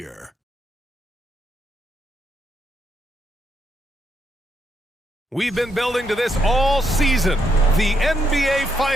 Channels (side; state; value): both; normal; correlation 0.78